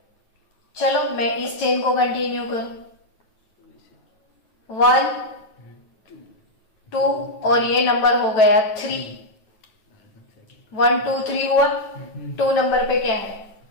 चलो मैं इस चेन को कंटिन्यू करूं, 1 2 और ये नंबर हो गया 3। 1 2 3 हुआ। 2 नंबर पे क्या है?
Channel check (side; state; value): right; late; 9.3 ms